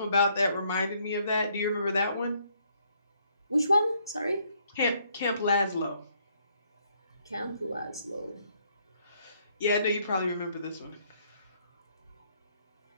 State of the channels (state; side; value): inverted; both; correlation -0.69